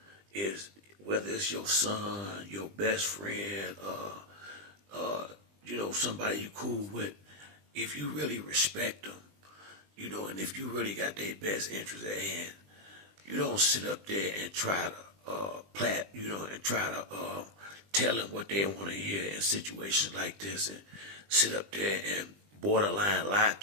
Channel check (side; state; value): left; late; 20 ms